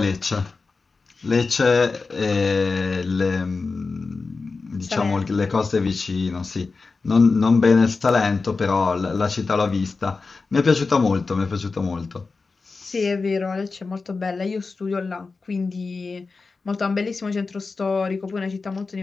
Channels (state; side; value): quieter; right; 4.2 dB